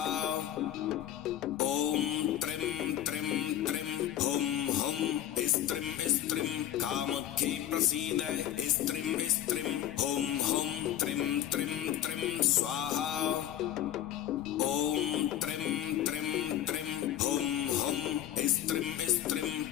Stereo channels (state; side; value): quieter; right; 11.6 dB